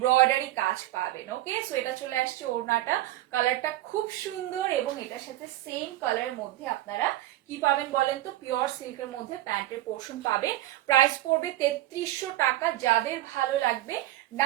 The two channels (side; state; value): left; quieter; 15.4 dB